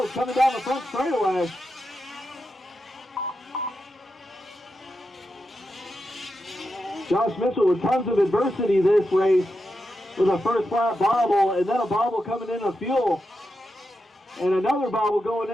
coming down the front straightaway. Josh Mitchell with tons of adversity this race with a first lap bobble and then a bobble coming into fuel. And another bobble going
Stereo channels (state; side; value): normal; both; correlation 0.88